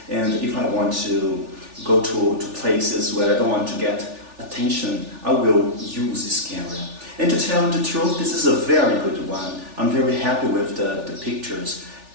and if I want to go to places where I don't want to get attention, I will use this camera. And to tell the truth, this is a very good one. I'm very happy with the pictures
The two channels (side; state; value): left; late; 3.4 ms